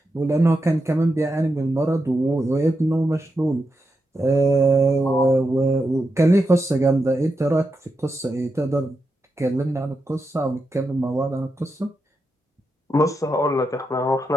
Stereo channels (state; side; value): normal; both; correlation 0.86